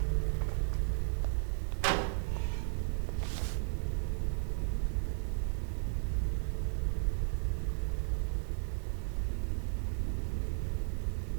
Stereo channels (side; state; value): left; silent; digital silence